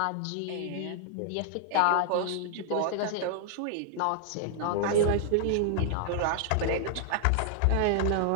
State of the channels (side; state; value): both; different; correlation -0.01